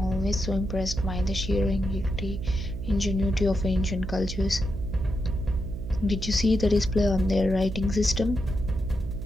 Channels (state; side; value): noise; right; hum, 7 dB below the sound